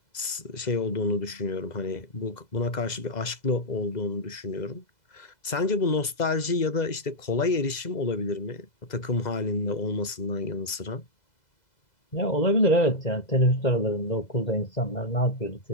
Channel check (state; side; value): late; right; 2.0 ms